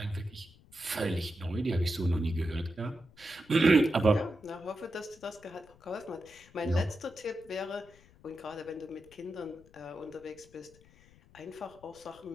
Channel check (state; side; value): noise; left; rumble, 25 dB below the sound